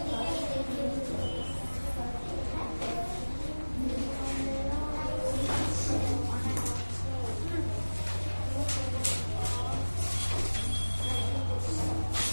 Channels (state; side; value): inverted; both; correlation -1.00